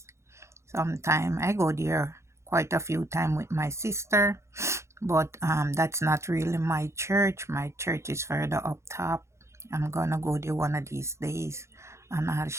Sometime I go there quite a few times with my sister, but that's not really my church. My church is further up top. I'm gonna go there one of these days, and I'll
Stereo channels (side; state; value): left; late; 0.14 ms